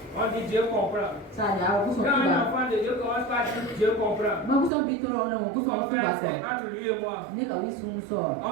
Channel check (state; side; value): drops out; left; at 4.7 s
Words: On dit Dieu comprend. Quand un enfant de Dieu commence par dire Dieu comprend, son frère, c'est entre lui et moi.